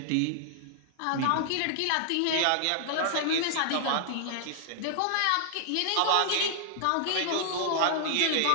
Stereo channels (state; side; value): different; both; correlation -0.01